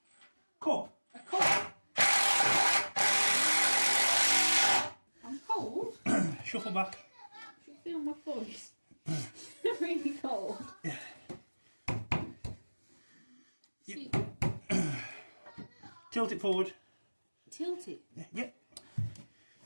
Cup. A cup? I'm cold. Shuffle back. I should feel my voice. Really cold. Yeah. See, Tilt it forward. tilt it. Yeah.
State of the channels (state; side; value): inverted; both; correlation -1.00